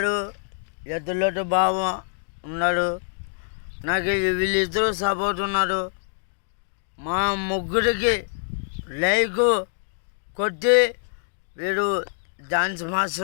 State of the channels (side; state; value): right; silent; digital silence